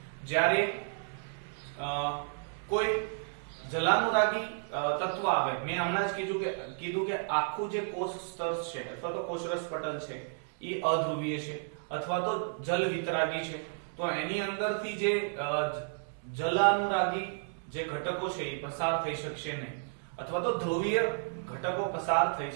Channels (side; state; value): left; silent; digital silence